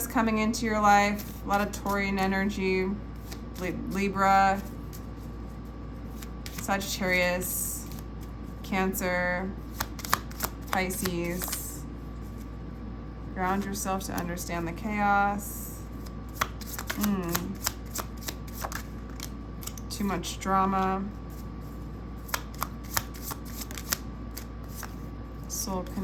coming into your life, a lot of Taurian energy, Libra, Sagittarius, Cancer, Pisces. Ground yourself to understand the chaos. Too much drama. Soul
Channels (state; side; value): identical; both; correlation 1.00